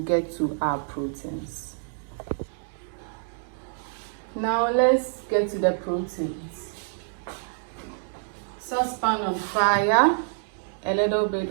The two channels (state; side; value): silent; left; digital silence